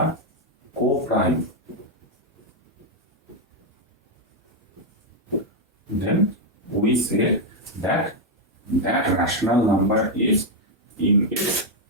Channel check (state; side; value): normal; both; correlation 0.01